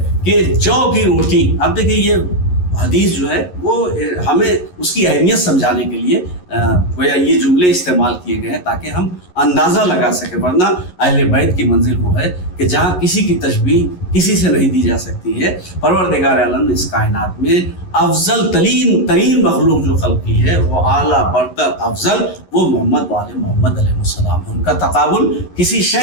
کہ جو کی روٹی، اب دیکھیں یہ حدیث جو ہے وہ ہمیں اس کی اہمیت سمجھانے کے لیے گویا یہ جملے استعمال کیے گئے ہیں تاکہ ہم اندازہ لگا سکیں، ورنہ اہل بیت کی منزل وہ ہے کہ جہاں کسی کی تشبیہ کسی سے نہیں دی جا سکتی ہے۔ پروردگار عالم نے اس کائنات میں افضل ترین مخلوق جو خلق کی ہے، وہ اعلیٰ برتر افضل، وہ محمد وآل محمد علیہ السلام، ان کا تقابل کسی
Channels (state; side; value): late; right; 11 ms